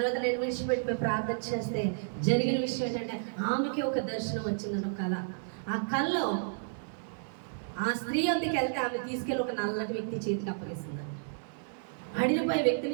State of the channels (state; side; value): silent; left; digital silence